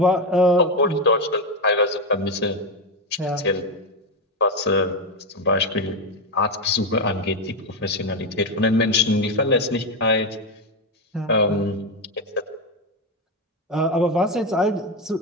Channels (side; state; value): both; normal; correlation 0.10